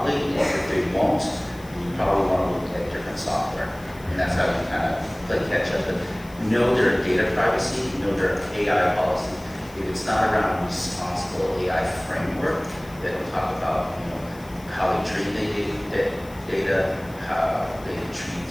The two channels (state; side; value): noise; left; hiss, 23 dB below the sound